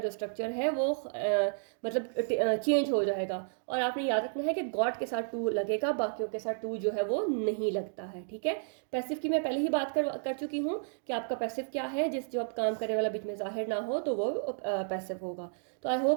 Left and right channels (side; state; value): left; silent; digital silence